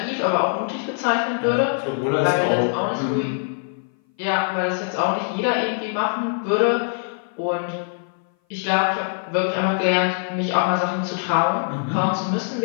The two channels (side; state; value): right; silent; 58 dB below the other